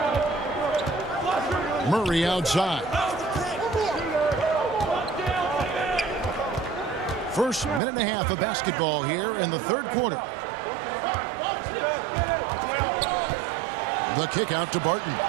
Murray outside. First minute and a half of basketball here in the third quarter. The kick out to Barton.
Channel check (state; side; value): drops out; left; at 7.8 s